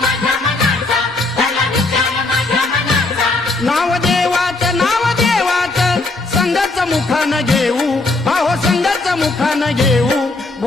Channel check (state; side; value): quieter; right; 3.2 dB